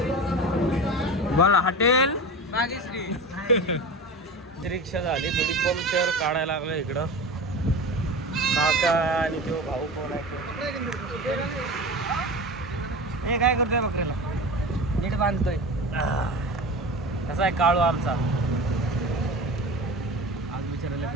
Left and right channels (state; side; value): normal; both; correlation 0.30